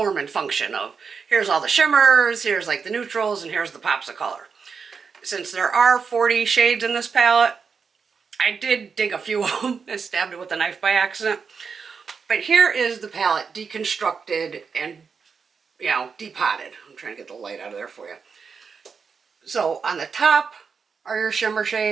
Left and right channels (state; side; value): quieter; left; 5.7 dB